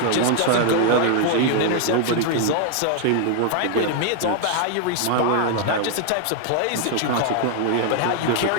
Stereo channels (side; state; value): both; different; correlation 0.00